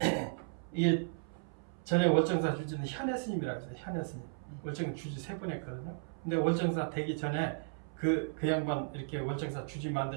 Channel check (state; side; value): silent; left; 55 dB below the other